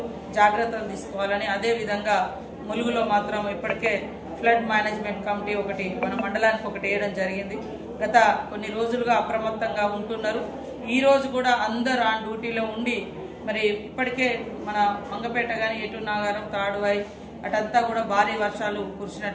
జాగ్రత్తలు తీసుకోవాలని, అదే విధంగా ములుగులో మాత్రం ఇప్పటికే ఫ్లడ్ మేనేజ్మెంట్ కమిటీ ఒకటి మన మండలానికి ఒకటి వేయడం జరిగింది। గత కొన్ని రోజులుగా అప్రమత్తంగా ఉంటున్నారు। ఈ రోజు కూడా అందరూ ఆన్ డ్యూటీలో ఉండి మరి ఇప్పటికే మన మంగపేట కానీ ఎటు నాగారం తాడువాయి అటంతా కూడా భారీ వర్షాలు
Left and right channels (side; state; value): both; identical; correlation 1.00